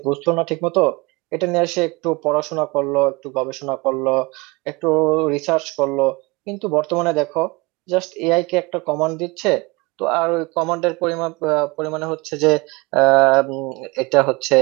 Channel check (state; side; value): quieter; left; 24.9 dB